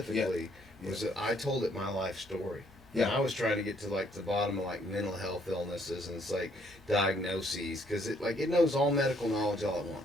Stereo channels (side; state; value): both; normal; correlation 0.66